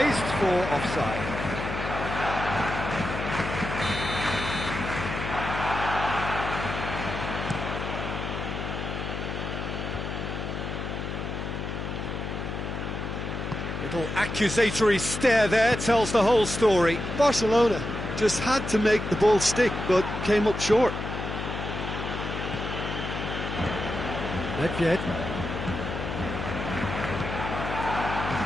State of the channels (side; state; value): left; noise; hum, 5 dB below the sound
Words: for offside. Little accusatory stare there tells the whole story. Barcelona just had to make the ball stick, but came up short. Nedved.